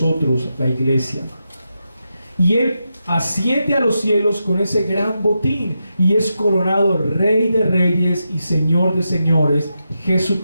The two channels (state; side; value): inverted; both; correlation -0.87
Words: la iglesia. Y Él asciende a los cielos con ese gran botín y es coronado Rey de reyes y Señor de señores.